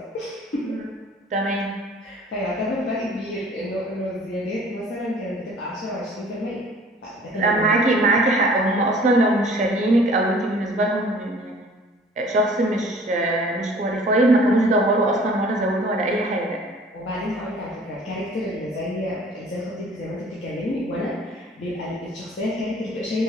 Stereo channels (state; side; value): normal; both; correlation 0.51